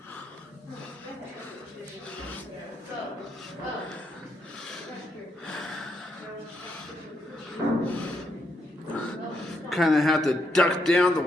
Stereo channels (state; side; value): normal; both; correlation 0.78